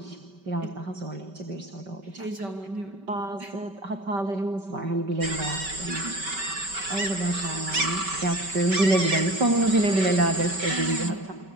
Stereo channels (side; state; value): left; late; 5.2 ms